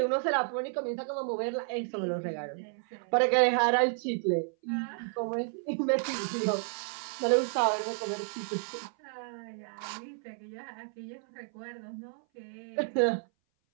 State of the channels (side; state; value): left; silent; 57 dB below the other